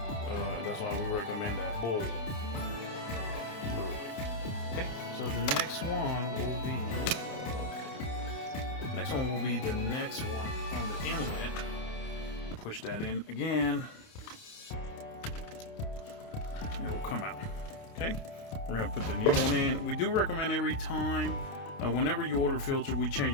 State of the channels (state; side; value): late; right; 29 ms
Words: That's why we recommend that bowl. Okay, so the next one will be the next one on the inlet. Push that in again. It will come out. Okay, we're gonna put the new one in. We do recommend every time, whenever you order filter, we